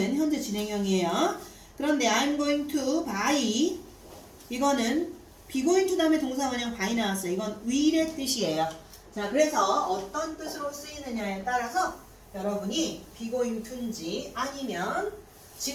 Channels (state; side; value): identical; both; correlation 1.00